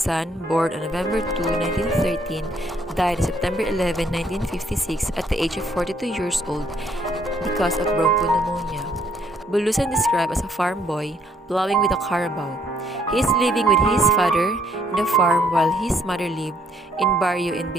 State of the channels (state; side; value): normal; both; correlation 0.68